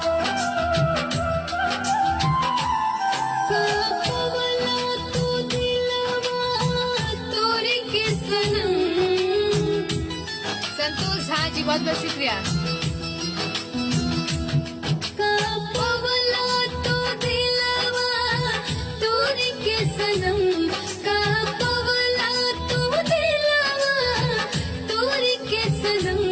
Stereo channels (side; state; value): both; identical; correlation 1.00